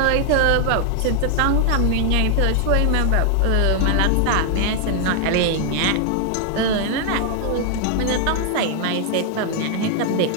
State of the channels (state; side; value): different; both; correlation 0.00